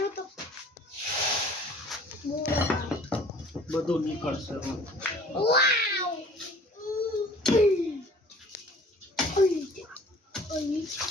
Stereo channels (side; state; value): both; normal; correlation 0.50